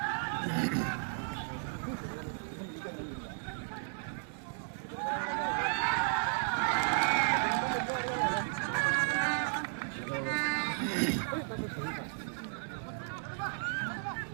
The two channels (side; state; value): left; silent; 55 dB below the other